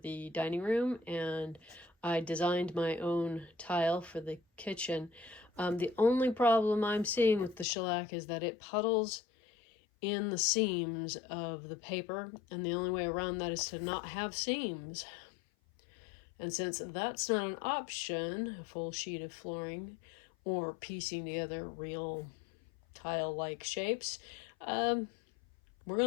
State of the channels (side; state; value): right; drops out; at 7.7 s